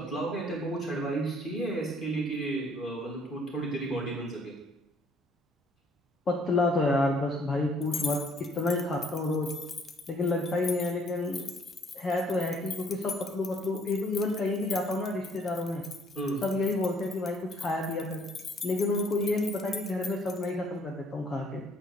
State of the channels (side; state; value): both; normal; correlation 0.62